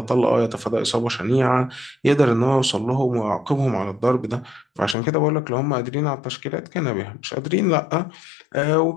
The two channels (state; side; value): drops out; right; at 5.0 s